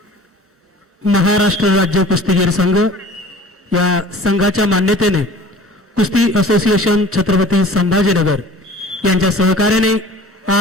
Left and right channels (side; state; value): both; normal; correlation 0.45